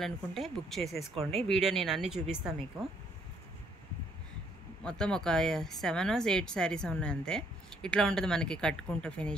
బుక్ చేసేసుకోండి. వీడియో నేను అన్నీ చూపిస్తాను మీకు. మొత్తం ఒక 7 or 8 శారీస్ ఉన్నాయి అంతే. ఇట్లా ఉంటుంది మనకి కట్టుకుంటే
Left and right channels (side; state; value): both; normal; correlation 0.67